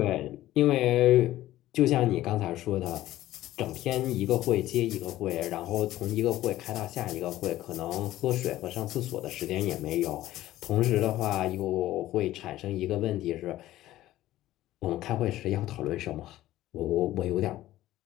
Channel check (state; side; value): quieter; right; 14.9 dB